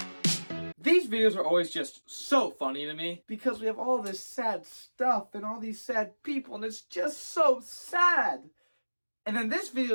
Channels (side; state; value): both; inverted; correlation -1.00